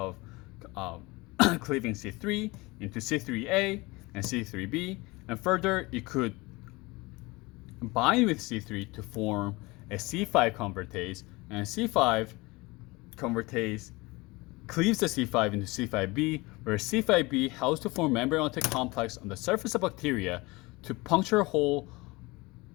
cleaving C3 into C3A and C3B, and further it could bind with C3 to form a C5 convertase, and C5 convertase cleaves the C5 into C5B, where C5B helps to form membrane attack complex on the surface of bacteria to puncture a hole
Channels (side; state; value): right; quieter; 23.4 dB